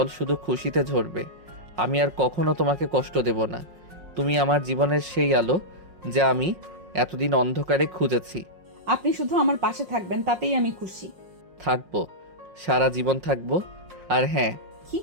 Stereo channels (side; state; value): left; late; 5.5 ms